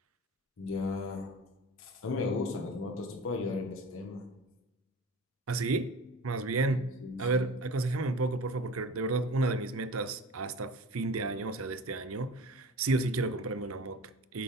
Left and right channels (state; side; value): normal; both; correlation 0.37